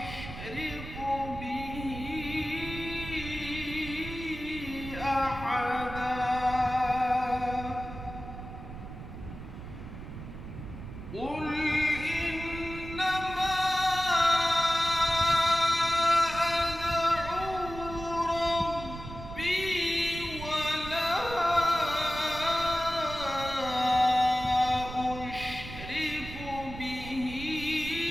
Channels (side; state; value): right; noise; rumble, 11 dB below the sound